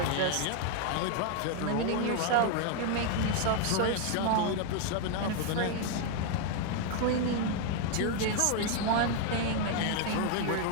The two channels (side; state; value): both; different; correlation 0.01